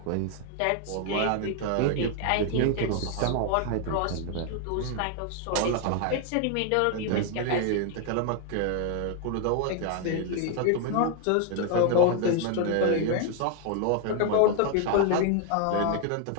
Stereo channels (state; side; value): different; both; correlation 0.00